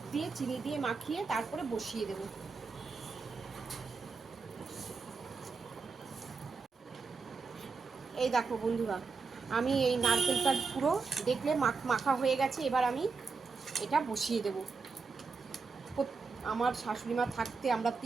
দিয়ে চিনি দিয়ে মাখিয়ে তারপরে বসিয়ে দেবো। এই দেখো বন্ধুরা, আমি এই নারকেলটা পুরো দেখলে মাখা হয়ে গেছে। এবার আমি এটা বসিয়ে দেব। আমার শাশুড়ি মা থাকতে আমরা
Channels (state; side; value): quieter; left; 4.7 dB